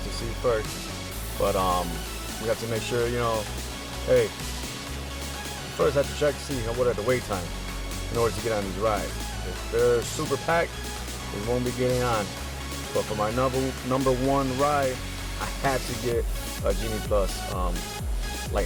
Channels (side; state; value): both; identical; correlation 1.00